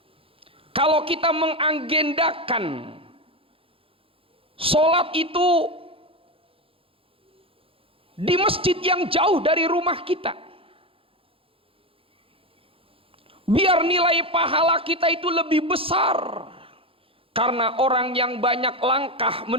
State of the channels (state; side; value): late; left; 0.27 ms